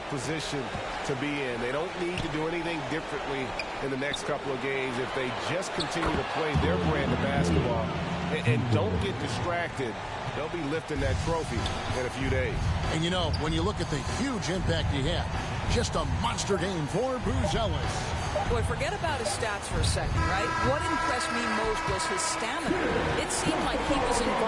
position to be in. They don't need to do anything differently in the next couple of games if they just continue to play their brand of basketball and don't get distracted. They'll be lifting that trophy in a few days. And you know, when you look at the huge impact he had, just a monster game for Buzelis. Boy, forget about his stats for a second, right? What impressed me most was his stamina. It seemed like he was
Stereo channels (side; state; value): both; identical; correlation 1.00